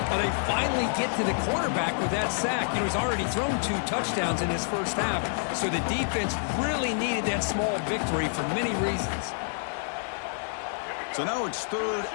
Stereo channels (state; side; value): silent; right; digital silence